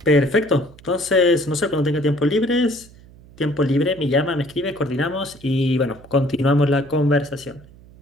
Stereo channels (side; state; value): right; noise; hum, 23 dB below the sound